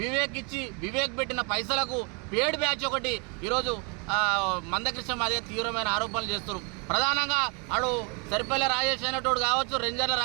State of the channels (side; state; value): left; quieter; 34.3 dB